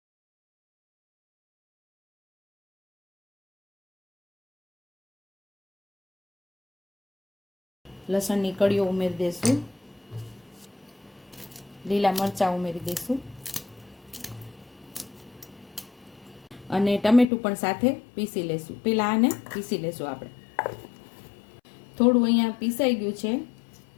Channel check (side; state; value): right; drops out; at 17.2 s